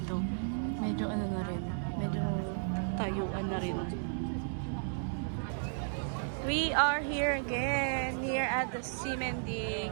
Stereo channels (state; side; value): silent; left; digital silence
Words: Medyo ano na rin. Medyo tayuan na rin. We are here again. Here at the Simending.